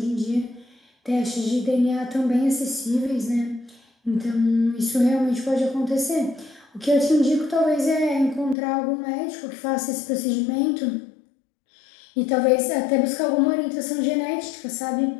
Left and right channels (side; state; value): right; drops out; at 8.6 s